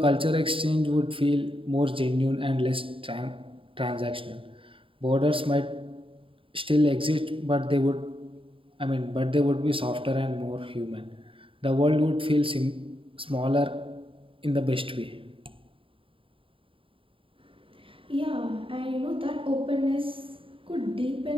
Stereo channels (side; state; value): left; late; 0.26 ms